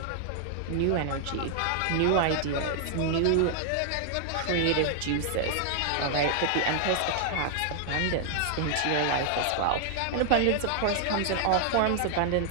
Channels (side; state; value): both; different; correlation -0.01